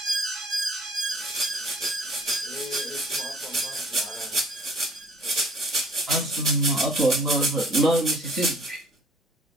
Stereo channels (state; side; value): normal; both; correlation 0.54